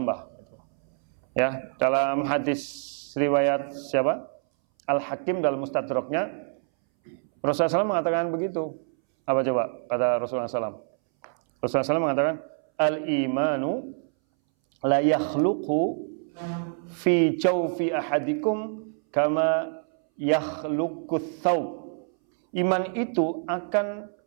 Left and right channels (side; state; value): left; silent; 61 dB below the other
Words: Gitu. Ya, dalam hadis riwayat siapa? Al-Hakim dalam Mustadraknya, Rasulullah SAW mengatakan begitu. Apa coba kata Rasulullah SAW? Rasulullah SAW mengatakan, al-imanu la yakhluqu fi jawfi ahadikum kama yakhluqut thawb. Iman itu akan